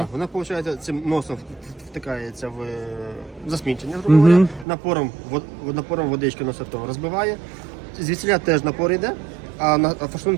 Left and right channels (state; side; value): drops out; left; at 4.7 s